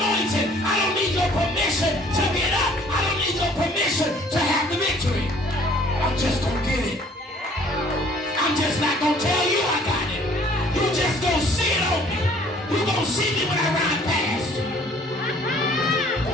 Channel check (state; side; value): normal; both; correlation 0.56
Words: I don't need your permission to get up. I don't need your permission to have the victory. I'm just gonna get it. I'm just not gonna tell you I got it. You just gonna see it on me. You gonna see me when I ride past.